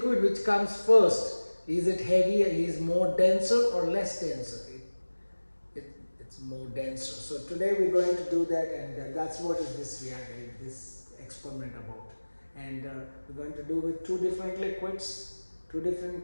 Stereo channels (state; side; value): inverted; both; correlation -1.00